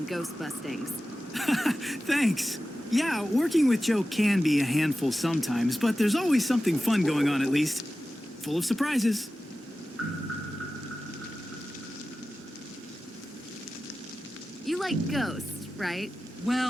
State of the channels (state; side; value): normal; both; correlation 0.95